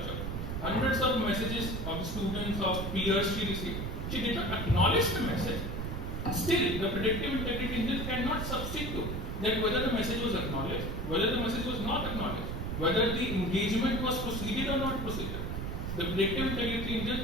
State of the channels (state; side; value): noise; right; rumble, 4 dB below the sound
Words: Hundreds of messages of students, of peers she received. She did not acknowledge the message. Still, the predictive integrity engine cannot substitute that whether the message was acknowledged, whether the message was not acknowledged, whether the engagement was proceeded or not proceeded. The predictive integrity